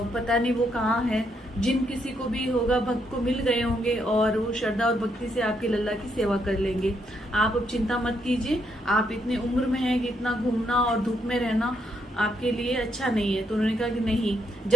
नहीं वो कहाँ है। जिन किसी को भी होगा भक्त को मिल गए होंगे और वो श्रद्धा और भक्ति से आपके लल्ला की सेवा कर लेंगे। आप अब चिंता मत कीजिए, आप इतने उम्र में हैं कि इतना घूमना और धूप में रहना आपके लिए अच्छा नहीं है। तो उन्होंने कहा कि नहीं,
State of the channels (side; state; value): both; normal; correlation 0.76